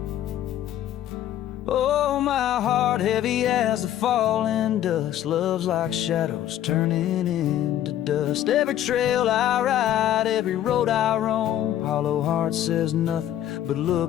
Oh, my heart heavy as the falling dust, love's like shadows turning into dust. Every trail I ride, every road I roam, hollow heart says nothing but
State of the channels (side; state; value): right; quieter; 11.8 dB